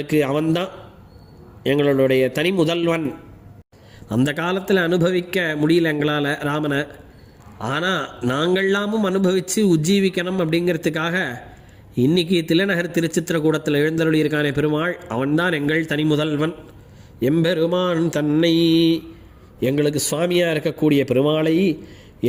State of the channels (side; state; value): both; identical; correlation 1.00